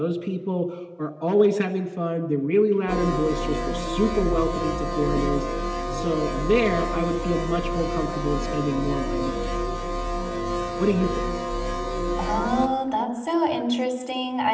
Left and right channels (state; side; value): identical; both; correlation 1.00